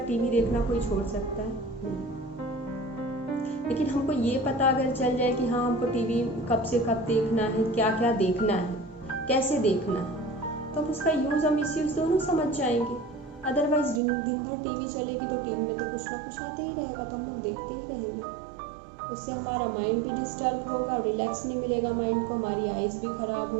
टीवी देखना कोई छोड़ सकता है? नहीं। लेकिन हमको ये पता अगर चल जाए कि हाँ हमको टीवी कब से कब देखना है, क्या क्या देखना है, कैसे देखना है, तो उसका यूज़ और मिसयूज़ दोनों समझ जाएंगे। अदरवाइज दिन भर टीवी चलेगी तो टीवी में तो कुछ ना कुछ आते ही रहेगा, तो हम लोग देखते ही रहेंगे। उससे हमारा माइंड भी डिस्टर्ब होगा, रिलैक्स नहीं मिलेगा माइंड को, हमारी आइज़ भी ख़राब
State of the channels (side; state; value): left; drops out; at 14.0 s